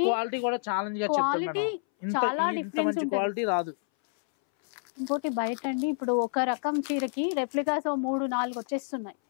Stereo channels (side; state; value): right; silent; 59 dB below the other